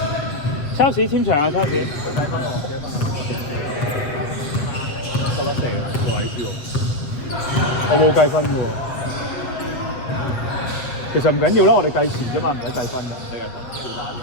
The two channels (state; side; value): late; right; 7.8 ms